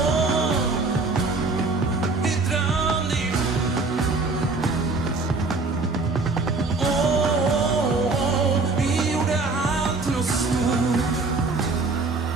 Vi drömde ihop. Vi gjorde allt till något stort.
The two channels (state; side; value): quieter; left; 3.7 dB